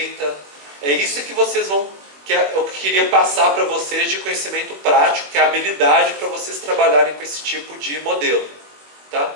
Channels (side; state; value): left; late; 21 ms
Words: É isso que vocês vão... que eu queria passar para vocês de conhecimento prático, que é a habilidade para vocês trabalharem com esse tipo de modelo. Tá?